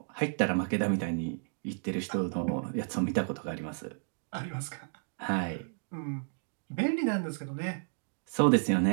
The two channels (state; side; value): silent; left; digital silence